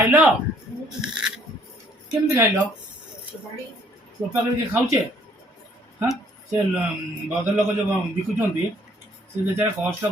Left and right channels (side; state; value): both; normal; correlation 0.62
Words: କେମିତି ଖାଇଲ ଚୋପା କରିକି ଖାଉଛେ ହଁ ସେ ଭଦ୍ରଲୋକ ଯେଉଁ ବିକୁଛନ୍ତି ସେ ଯେତେବେଳେ କଷ୍ଟ